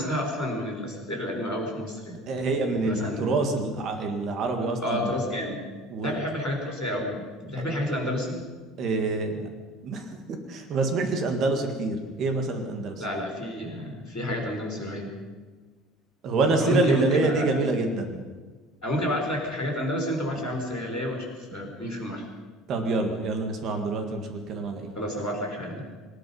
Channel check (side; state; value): both; normal; correlation 0.45